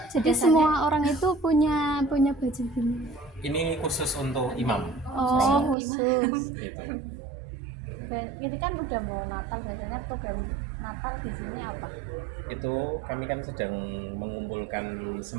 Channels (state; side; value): drops out; left; at 5.8 s